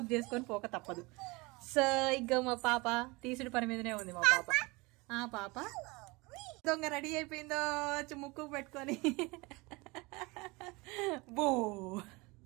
చేసుకొని పోక తప్పదు. సో ఇక మా పాప తీసుడు పని మీదనే ఉంది. మా పాప పాప దొంగ రెడీ అయిపోయిందో ముక్కు పెట్టుకొని బో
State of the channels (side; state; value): left; quieter; 25.0 dB